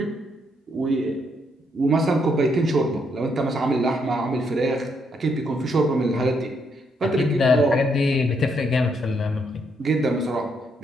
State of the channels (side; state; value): both; normal; correlation 0.75